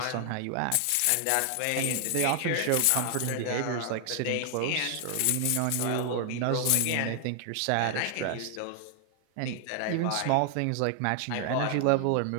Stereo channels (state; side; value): different; both; correlation 0.00